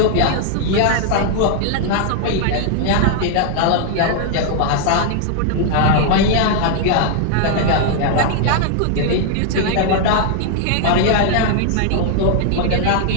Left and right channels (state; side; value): different; both; correlation 0.00